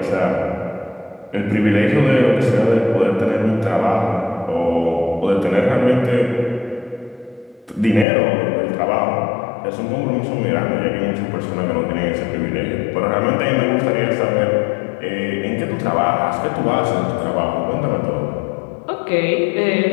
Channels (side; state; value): right; drops out; at 8.1 s